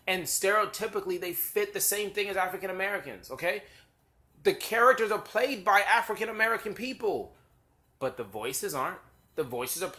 And stereotypically, they fit the same thing as African Americans. Okay? The characters are played by African American people. But the voices aren't. The voices are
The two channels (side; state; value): both; identical; correlation 1.00